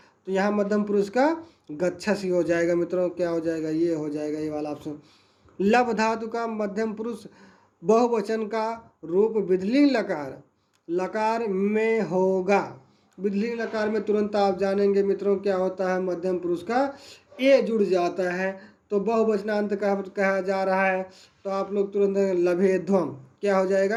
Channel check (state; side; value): identical; both; correlation 1.00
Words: तो यहाँ मध्यम पुरुष का गच्छसि हो जाएगा मित्रों। क्या हो जाएगा, ये हो जाएगा ये वाला ऑप्शन। लभ धातु का मध्यम पुरुष बहुवचन का रूप विधिलिंग लकार में होगा। विधिलिंग लकार में तुरंत आप जानेंगे मित्रों क्या होता है, मध्यम पुरुष का ए जुड़ जाता है, तो बहुवचनांत कहा जा रहा है, तो आप लोग तुरंत लभेध्वम, क्या हो